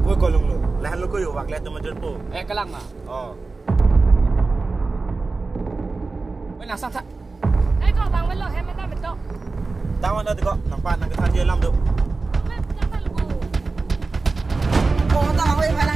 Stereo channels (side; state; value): left; quieter; 3.8 dB